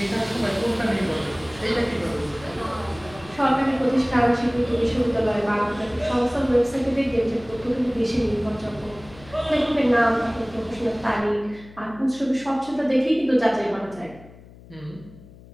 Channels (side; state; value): left; noise; hum, 21 dB below the sound